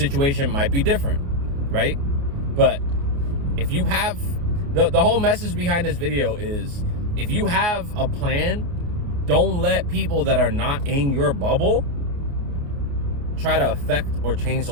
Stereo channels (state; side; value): late; left; 29 ms